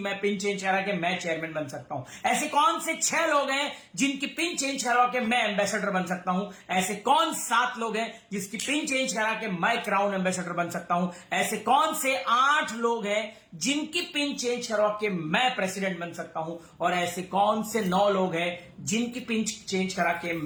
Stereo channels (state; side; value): identical; both; correlation 1.00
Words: पिन चेंज करा के मैं चेयरमैन बन सकता हूं, ऐसे कौन से 6 लोग हैं जिनकी पिन चेंज करवा के मैं एम्बेसडर बन सकता हूं, ऐसे कौन 7 लोग हैं जिसकी पिन चेंज करा के मैं क्राउन एम्बेसडर बन सकता हूं, ऐसे कौन से 8 लोग हैं जिनकी पिन चेंज करवा के मैं प्रेसिडेंट बन सकता हूं, और ऐसे कौन से 9 लोग हैं जिनकी पिन चेंज करा के